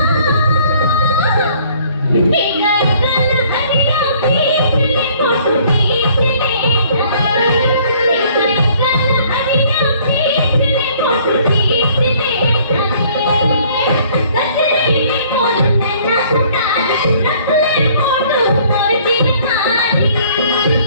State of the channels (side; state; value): both; inverted; correlation -0.58